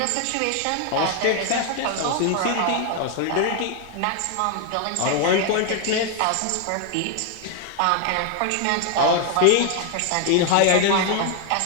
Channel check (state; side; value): different; both; correlation 0.00